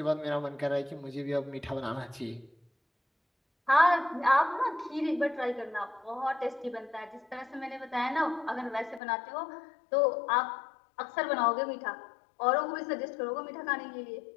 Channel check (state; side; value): drops out; right; at 9.0 s